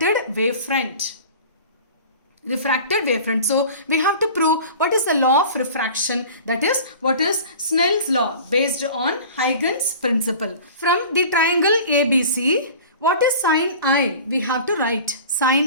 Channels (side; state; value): both; inverted; correlation -0.41